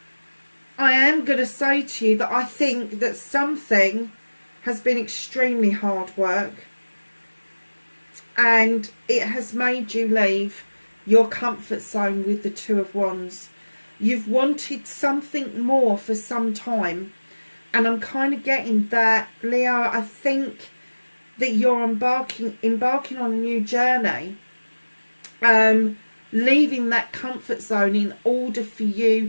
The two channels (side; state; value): both; inverted; correlation -1.00